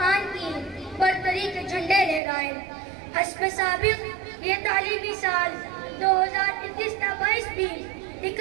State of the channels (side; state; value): left; drops out; at 2.2 s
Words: کی برتری کے جھنڈے لہرائے۔ حسب سابق یہ تعلیمی سال 2021-22 بھی